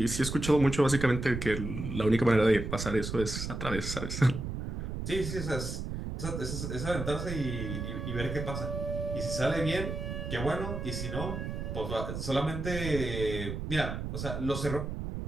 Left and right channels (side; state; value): right; noise; rumble, 5 dB below the sound